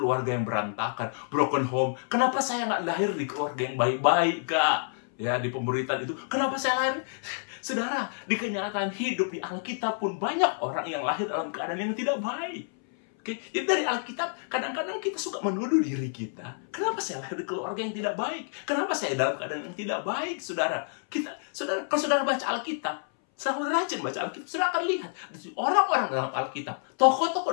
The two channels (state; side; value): silent; right; 59 dB below the other